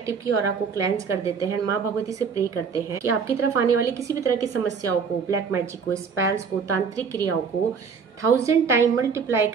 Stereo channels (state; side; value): quieter; left; 5.9 dB